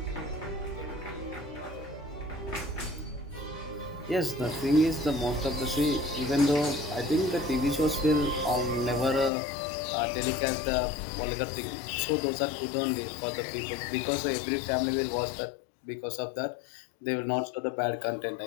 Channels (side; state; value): right; drops out; at 9.3 s